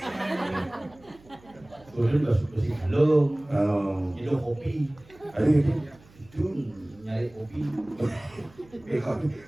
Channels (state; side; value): noise; right; hum, 25 dB below the sound